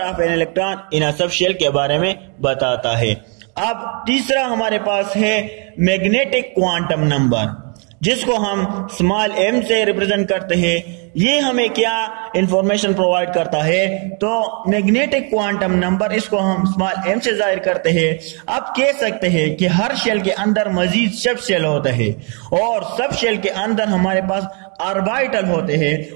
of an electron in a subshell के बारे में बताता है। अब तीसरा हमारे पास है मैग्नेटिक क्वांटम नंबर, जिसको हम स्मॉल m से रिप्रेजेंट करते हैं। ये हमें क्या इंफॉर्मेशन प्रोवाइड करता है? तो मैग्नेटिक क्वांटम नंबर, इसको हम स्मॉल m से जाहिर करते हैं। अब कह सकते हैं कि हर शेल के अंदर मजीद सब शेल होते हैं, और सब शेल के अंदर हमारे पास ऑर्बिटल होते हैं,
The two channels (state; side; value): quieter; left; 37.4 dB